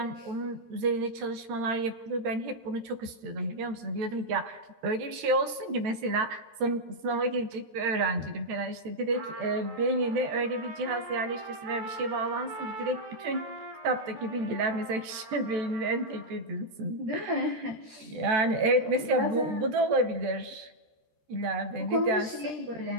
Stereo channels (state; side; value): late; left; 13 ms